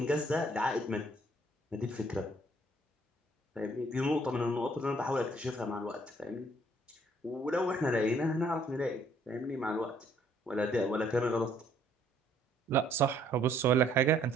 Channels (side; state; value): both; normal; correlation 0.63